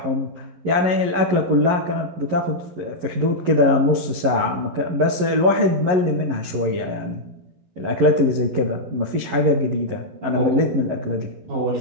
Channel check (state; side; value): late; left; 11 ms